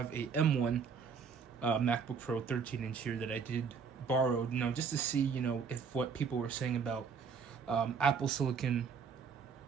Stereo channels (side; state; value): left; quieter; 6.0 dB